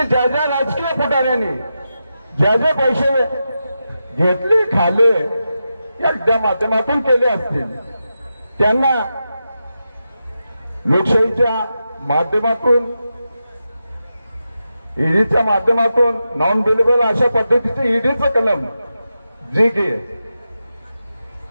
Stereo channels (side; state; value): both; inverted; correlation -0.89